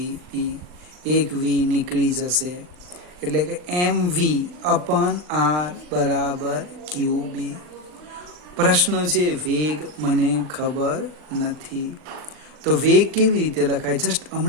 એક V નીકળી જશે એટલે કે mv/r બરાબર QB. પ્રશ્ન છે વેગ મને ખબર નથી. તો વેગ કેવી રીતે લખાય? જસ્ટ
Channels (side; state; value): left; late; 39 ms